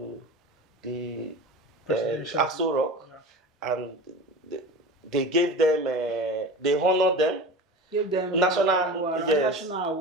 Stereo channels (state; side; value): normal; both; correlation 0.32